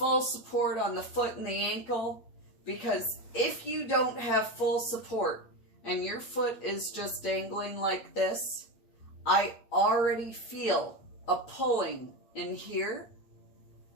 support on the foot and the ankle. Because if you don't have full support and your foot is just dangling like this, I already feel a pulling in here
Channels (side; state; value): right; late; 8.6 ms